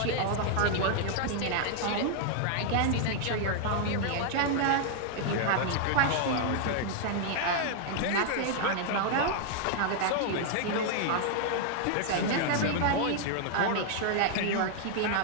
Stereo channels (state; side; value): different; both; correlation 0.00